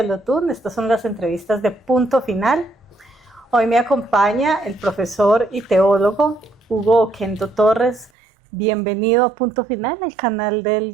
Lotún. Estas son las entrevistas de Punto Final. Hoy me acompaña el profesor y teólogo Hugo Oquendo Torres. Bienvenido a Punto Final, el canal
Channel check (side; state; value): left; drops out; at 8.1 s